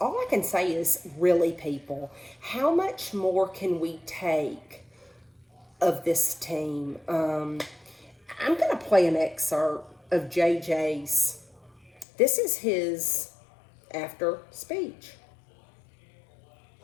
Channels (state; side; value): drops out; right; at 12.1 s